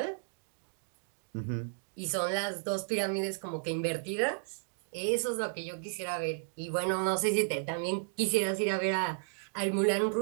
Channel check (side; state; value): left; silent; digital silence